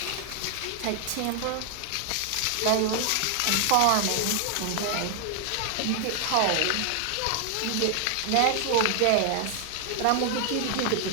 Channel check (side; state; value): both; different; correlation 0.00